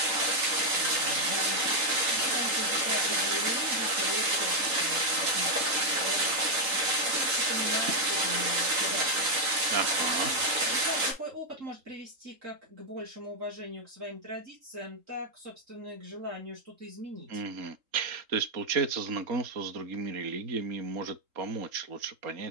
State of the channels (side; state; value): left; late; 3.8 ms